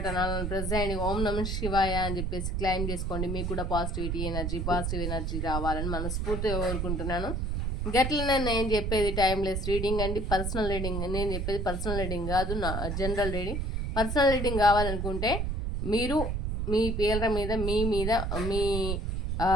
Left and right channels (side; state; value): right; noise; rumble, 1 dB below the sound